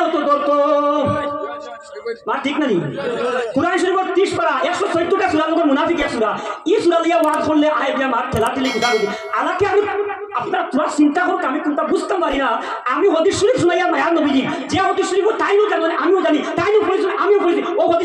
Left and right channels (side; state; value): both; identical; correlation 1.00